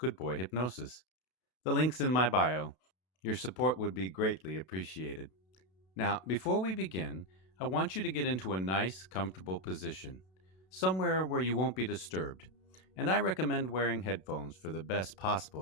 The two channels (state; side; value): late; right; 32 ms